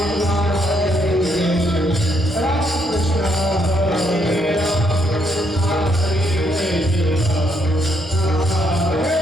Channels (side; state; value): both; normal; correlation 0.74